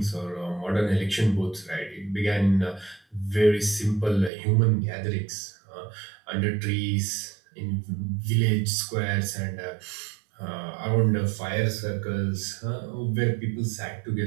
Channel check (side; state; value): left; drops out; at 4.3 s